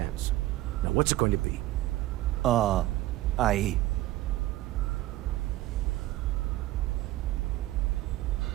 Now what's it going to be? All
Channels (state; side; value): quieter; left; 16.5 dB